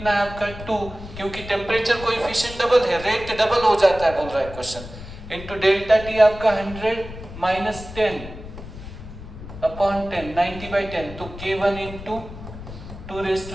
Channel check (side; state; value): left; noise; rumble, 13 dB below the sound